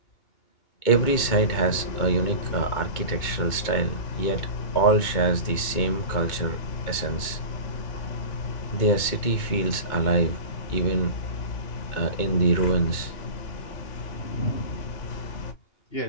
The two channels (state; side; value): late; right; 2.2 ms